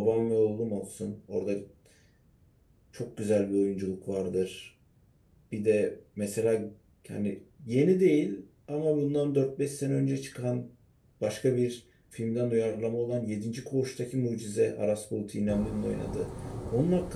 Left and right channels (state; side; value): identical; both; correlation 1.00